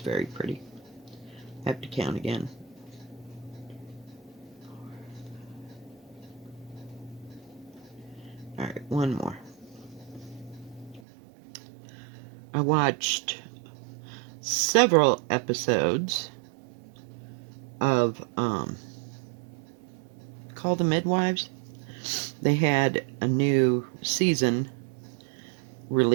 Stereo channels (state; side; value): drops out; left; at 11.0 s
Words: pretty. Have to count again. Alright, one more. I watched several episodes of Call the Midwives. They had a new season